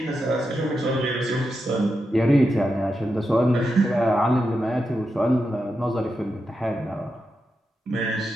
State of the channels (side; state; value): both; normal; correlation 0.87